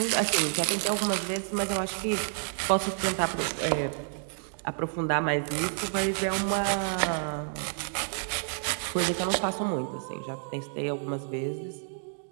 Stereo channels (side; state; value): left; silent; digital silence